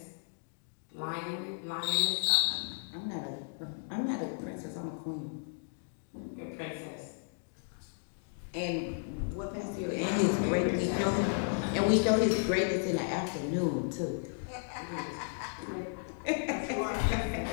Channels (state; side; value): silent; right; digital silence